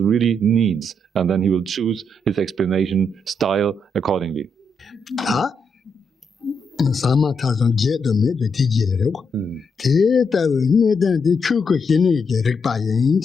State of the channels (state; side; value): normal; both; correlation 0.79